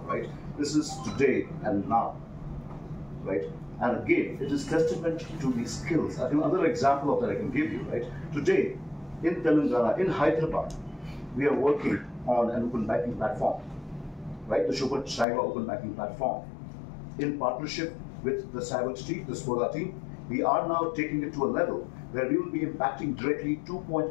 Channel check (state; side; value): drops out; right; at 15.2 s